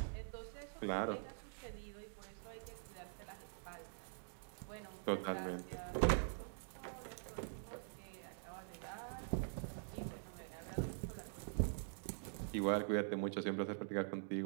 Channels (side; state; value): left; silent; digital silence